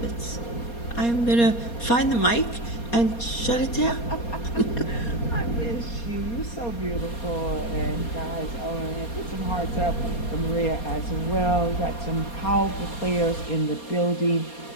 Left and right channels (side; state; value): right; late; 4.2 ms